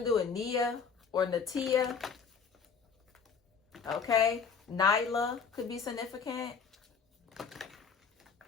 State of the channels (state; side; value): quieter; right; 6.0 dB